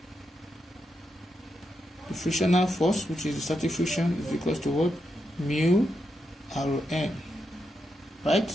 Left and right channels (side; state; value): both; normal; correlation 0.84